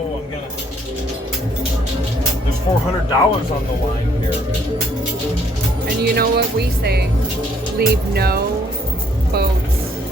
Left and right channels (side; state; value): both; normal; correlation 0.66